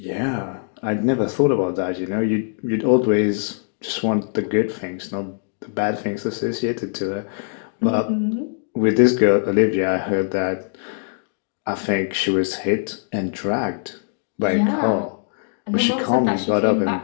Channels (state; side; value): silent; right; digital silence